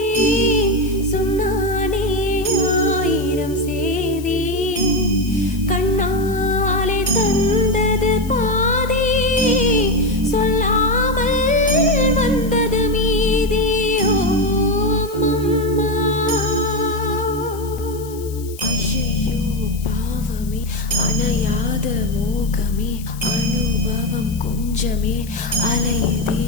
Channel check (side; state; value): left; noise; hiss, 18 dB below the sound